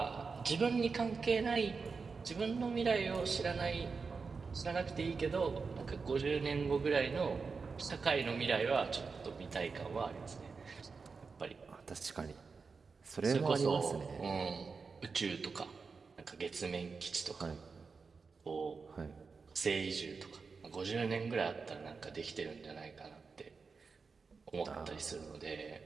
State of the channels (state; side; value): quieter; left; 4.8 dB